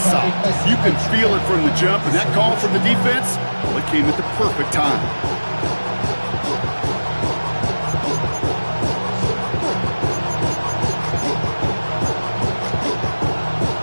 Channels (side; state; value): both; inverted; correlation -1.00